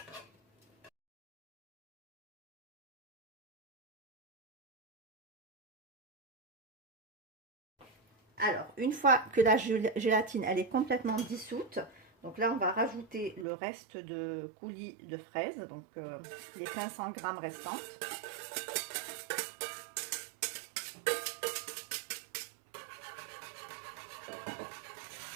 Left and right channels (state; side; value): drops out; left; at 13.5 s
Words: Alors, une fois que la gélatine elle est complètement dissoute, donc là on va rajouter le reste de coulis de fraises, donc les 500 g restantes.